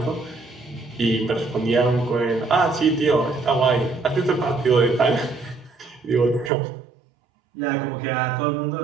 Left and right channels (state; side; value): drops out; left; at 6.5 s